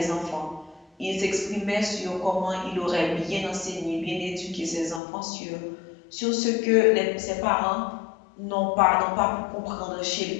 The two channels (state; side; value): drops out; right; at 5.0 s